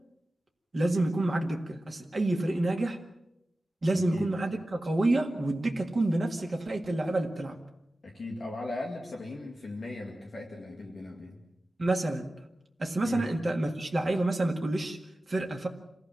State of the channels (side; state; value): both; normal; correlation 0.95